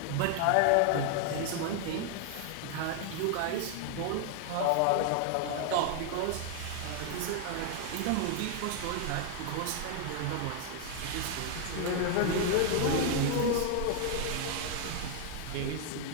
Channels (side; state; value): both; different; correlation 0.00